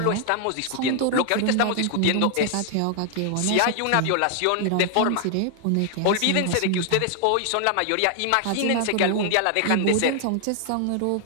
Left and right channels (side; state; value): both; different; correlation 0.00